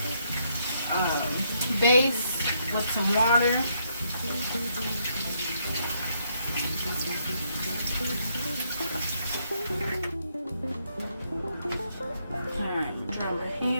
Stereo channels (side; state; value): both; inverted; correlation -0.74